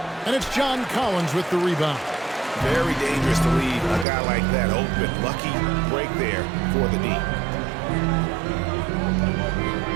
And it's John Collins with the rebound. Very dangerous to leave a guy like that open. Lucky break there for the D.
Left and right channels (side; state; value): left; drops out; at 4.0 s